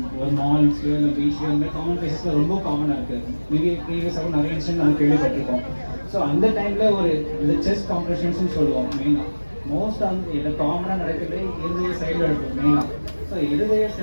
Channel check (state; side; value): inverted; both; correlation -1.00